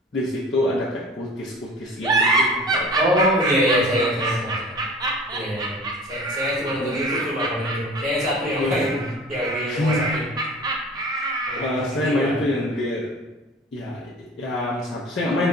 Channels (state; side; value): normal; both; correlation 0.42